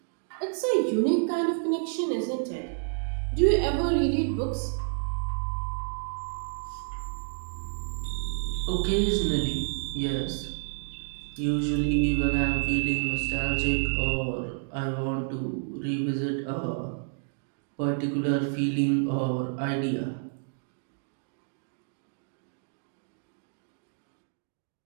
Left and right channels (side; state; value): left; silent; digital silence